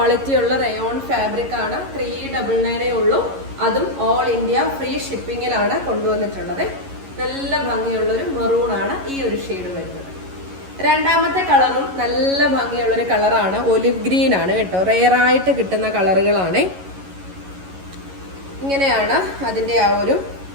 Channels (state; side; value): late; left; 11 ms